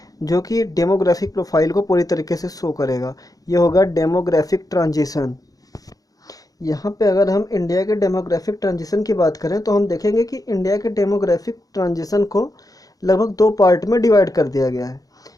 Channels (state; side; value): late; right; 0.18 ms